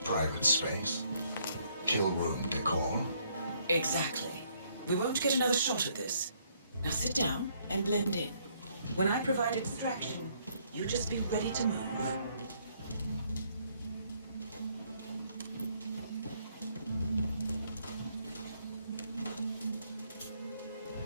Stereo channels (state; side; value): inverted; both; correlation -0.68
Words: private space? Kill room decor? Exactly. We won't get another shot at this. Now sit down and blend in. When I provide a distraction, you just be ready to move.